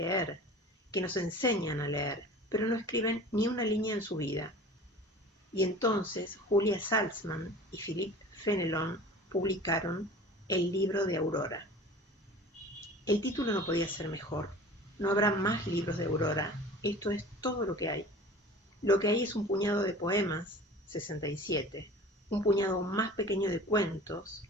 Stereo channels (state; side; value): normal; both; correlation 0.40